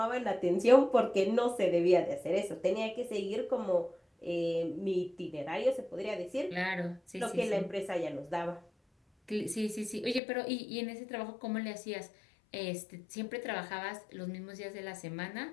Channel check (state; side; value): drops out; right; at 10.2 s